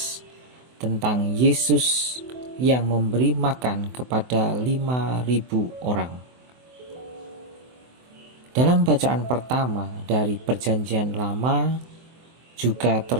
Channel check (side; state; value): left; late; 24 ms